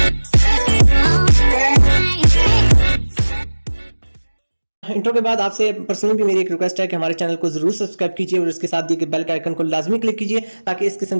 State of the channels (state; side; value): inverted; both; correlation -1.00